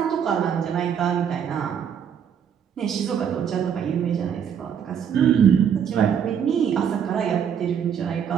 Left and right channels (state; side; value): quieter; left; 8.1 dB